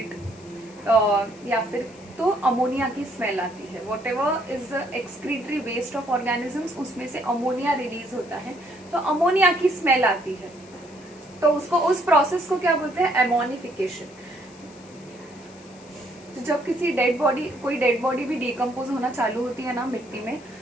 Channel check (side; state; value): left; noise; hiss, 25 dB below the sound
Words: या फिर तो अमोनिया की स्मेल आती है. Whatever is the excretory waste of organisms उसमें से अमोनिया रिलीज होता है, तो अमोनिया की स्मेल आती है. तो उसको, उस प्रोसेस को क्या बोलते हैं? एमोनिफिकेशन. तो जब कोई डेड बॉडी भी डिकम्पोज होना चालू होती है ना मिट्टी में,